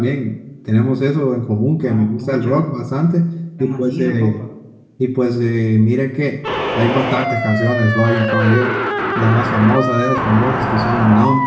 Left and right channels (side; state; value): both; identical; correlation 1.00